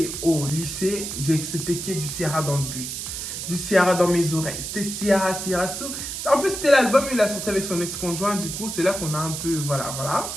au lycée, c'était que du Ciara dans le bus. Du Ciara dans mes oreilles. C'était Ciara. En plus, c'était l'album, il a sorti avec son ex-conjoint. Du coup, c'est là qu'on a un peu, voilà.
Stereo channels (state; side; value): noise; right; hiss, 6 dB below the sound